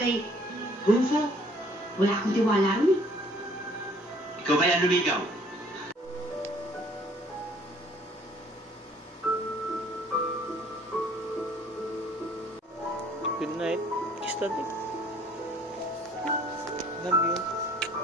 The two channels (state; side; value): normal; both; correlation 0.57